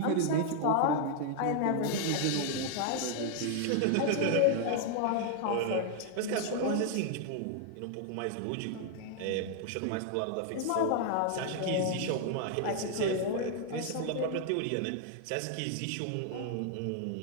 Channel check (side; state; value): both; different; correlation 0.00